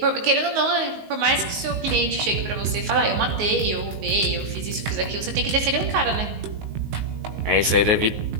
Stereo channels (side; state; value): left; late; 19 ms